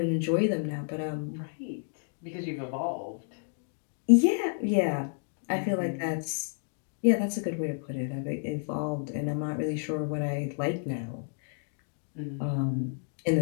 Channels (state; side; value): silent; right; digital silence